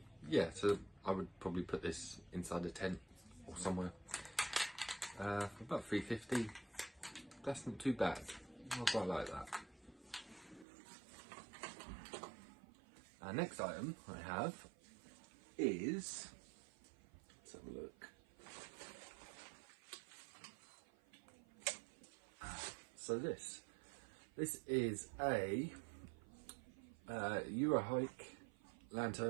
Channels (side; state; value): left; drops out; at 10.7 s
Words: Yeah, so I would probably put this inside a tent or somewhere. For about £3.50. That's not too bad. I quite like that. Our next item I have is, let's have a look. So this is a Eurahike